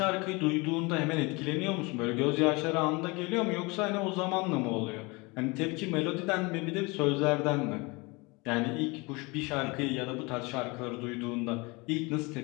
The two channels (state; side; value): quieter; right; 26.3 dB